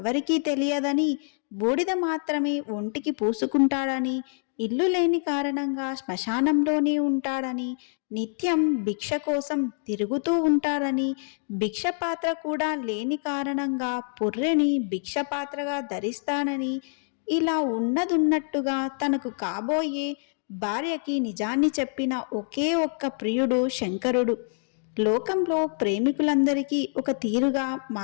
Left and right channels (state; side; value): silent; right; 61 dB below the other